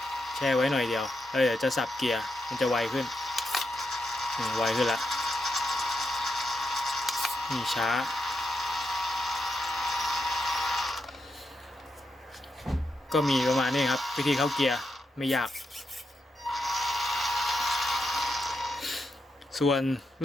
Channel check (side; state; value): both; normal; correlation 0.84